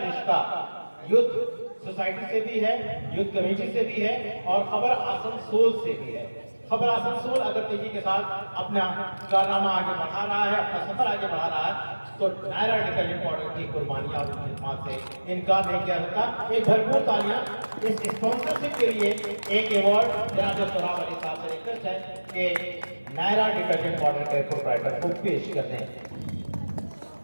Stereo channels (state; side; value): inverted; both; correlation -1.00